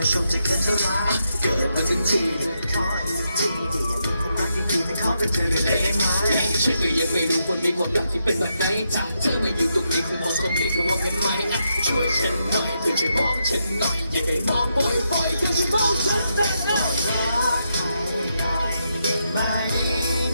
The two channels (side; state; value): both; inverted; correlation -0.82